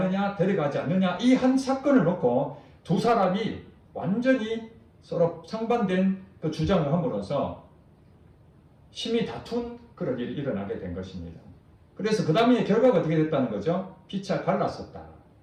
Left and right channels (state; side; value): identical; both; correlation 1.00